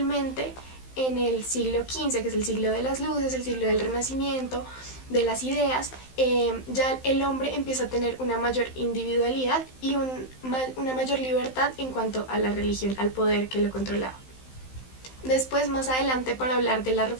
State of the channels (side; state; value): right; late; 15 ms